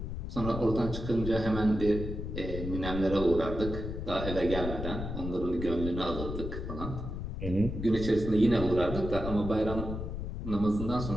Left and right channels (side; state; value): left; noise; rumble, 5 dB below the sound